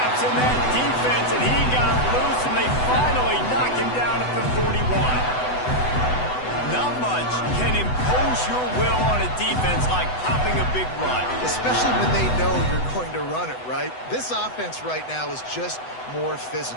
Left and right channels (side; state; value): right; late; 8.0 ms